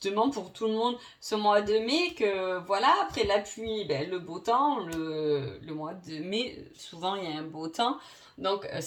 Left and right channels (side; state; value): both; identical; correlation 1.00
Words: pour tout le monde ce mois de mai que voilà, après la pluie, le beau temps, le mois de mai, souvent il y a un beau temps, donc